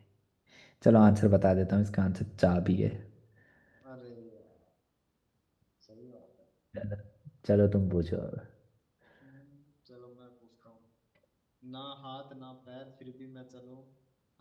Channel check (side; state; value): both; identical; correlation 1.00